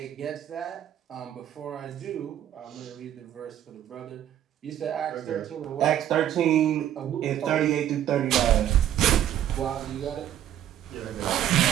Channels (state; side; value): quieter; left; 11.2 dB